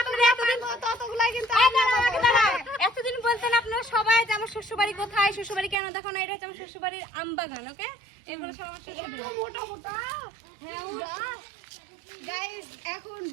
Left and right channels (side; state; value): left; drops out; at 5.8 s